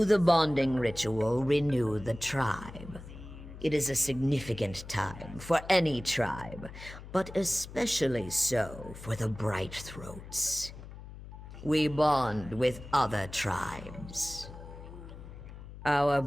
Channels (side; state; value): left; noise; hum, 14 dB below the sound